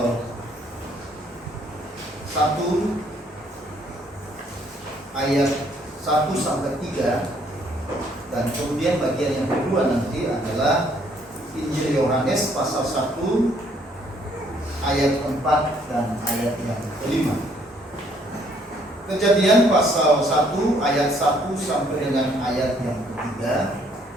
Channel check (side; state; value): both; normal; correlation 0.65